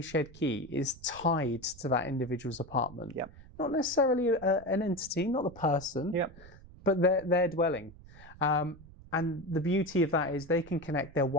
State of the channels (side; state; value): right; noise; rumble, 20 dB below the sound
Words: key is tied to that individual's apartment. Not necessarily an entity, not the person, but their dwelling. And the beauty of that is they can connect their